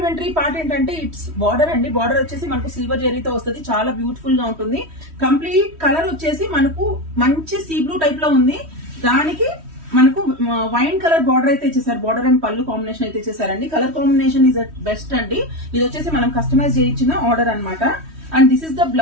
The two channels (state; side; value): late; left; 3.1 ms